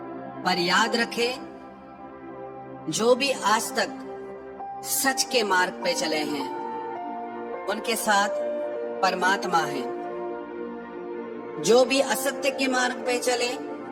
पर याद रखें, जो भी आज तक सच के मार्ग पे चले हैं उनके साथ परमात्मा है। जो भी असत्य के मार्ग पे चले,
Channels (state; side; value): identical; both; correlation 1.00